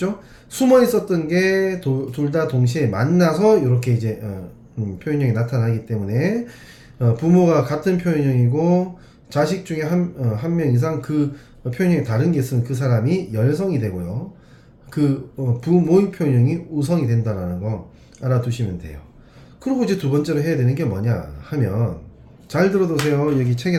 숨어 있었던 게 둘 다 동시에 만나서 이렇게 이제 표현형이 나타나기 때문에 부모가 같은 표현형이고 자식 중에 한 명 이상 그 표현형이 다른 게 있으면 그 사람이 열성이 되고요. 그 부모의 표현형이 우성이 된다는 거 알아두시면 돼요. 그리고 이제 두 번째로 해야 되는 게 뭐냐 하면 잘 들어두세요. 여기 책에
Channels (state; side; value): identical; both; correlation 1.00